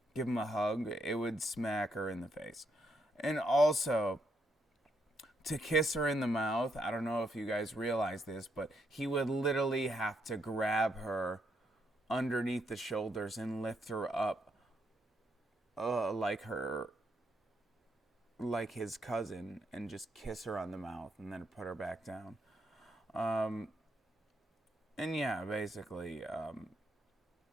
him a hug, it would smack her in the face. And also, to kiss her in the mouth, I don't know if you guys realize this, but he would literally have to grab her underneath the shoulders and lift her up like his cousin, and just kiss her on the mouth and then put her back down. And yeah, basically,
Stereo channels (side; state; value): both; normal; correlation 0.77